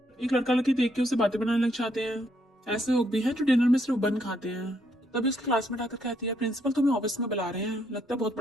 एक लड़का लड़की देख के उसे बातें बनाने लग जाते हैं। ऐसे लोग भी हैं जो डिनर में सिर्फ बन खाते हैं। तभी उसकी क्लासमेट आकर कहती है प्रिंसिपल तुम्हें ऑफिस में बुला रहे हैं, लगता है बहुत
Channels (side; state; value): both; normal; correlation 0.74